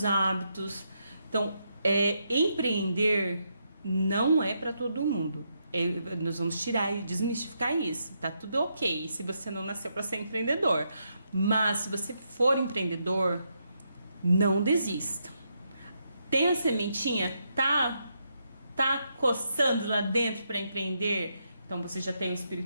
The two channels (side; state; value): both; inverted; correlation -0.80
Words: hábitos. Então, empreender não é para todo mundo. Nós vamos tirar e desmistificar isso. Tá tudo ok se você não nasceu para ser empreendedor. Mas se você for empreendedor, não desista. Tem a sementinha, tá coçando lá dentro para empreender? Então você já tem o